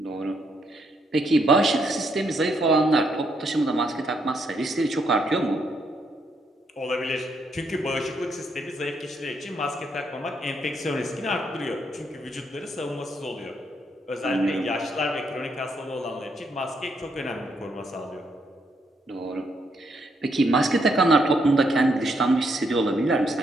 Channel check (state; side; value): normal; both; correlation 0.75